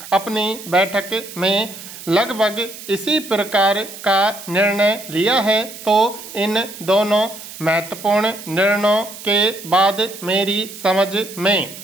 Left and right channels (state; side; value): noise; right; hiss, 14 dB below the sound